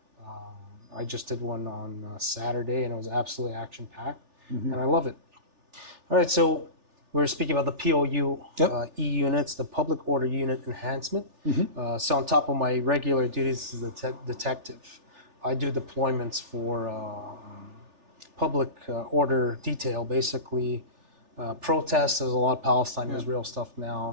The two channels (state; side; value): late; left; 3.4 ms